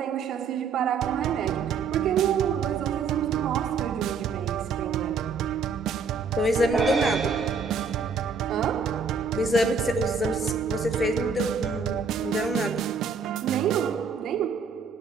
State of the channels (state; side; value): quieter; left; 5.1 dB